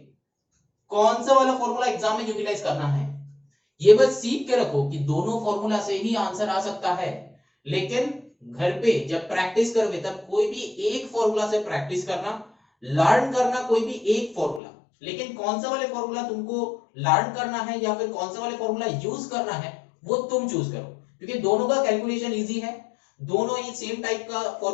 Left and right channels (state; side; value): drops out; right; at 14.6 s